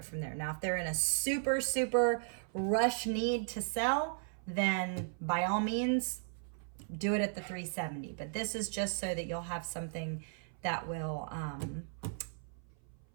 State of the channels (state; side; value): silent; left; 54 dB below the other